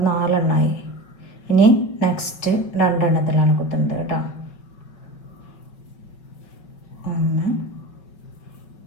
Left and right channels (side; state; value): right; late; 5.2 ms